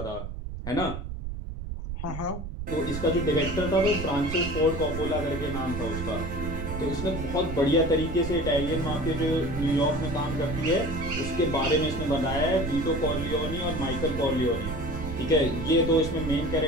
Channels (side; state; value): right; noise; rumble, 7 dB below the sound